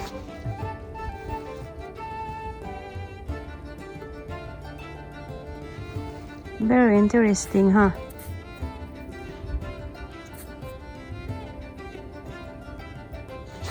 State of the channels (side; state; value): both; identical; correlation 1.00